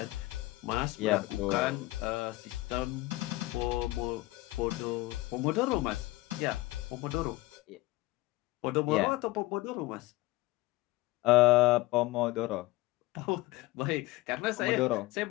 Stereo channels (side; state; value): right; quieter; 19.7 dB